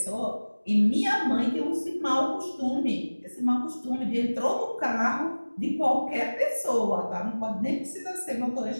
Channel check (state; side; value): inverted; both; correlation -1.00